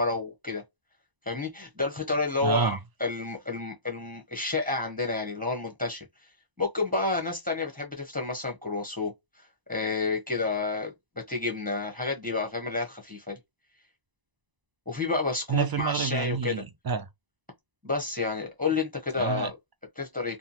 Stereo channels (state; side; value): late; left; 1.0 ms